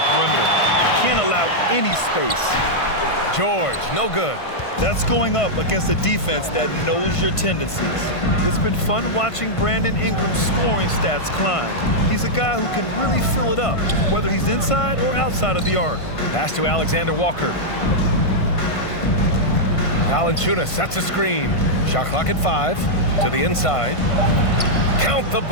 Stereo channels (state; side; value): late; right; 1.5 ms